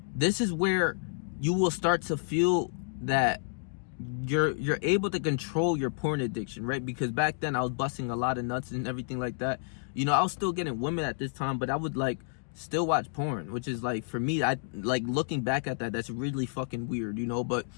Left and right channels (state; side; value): silent; right; digital silence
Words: this is where you will start to feel that you're able to control your porn addiction, right? Because back then I was busting a lot of nuts and everything like that. You know, I was still getting women at this time, but I would, like, still watch porn, which is, like, for me, I like looking back at that, that's really fucking weird, you know. But,